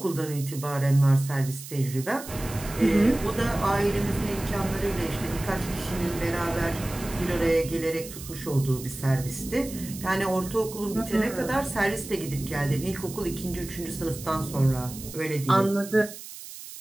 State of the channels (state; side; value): noise; right; hiss, 13 dB below the sound